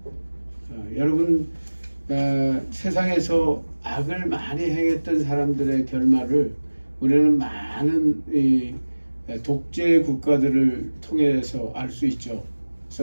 여러분 세상에서 악을 많이 행했던 사람들의 결말을 우리는 많은 독재 국가들을 통해서 알 수 있죠.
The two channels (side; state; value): both; inverted; correlation -1.00